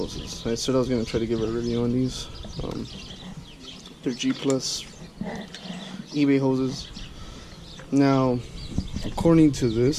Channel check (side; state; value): both; identical; correlation 1.00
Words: I said I was going to try to give a review on these. They're G Plus eBay hoses. Now, according to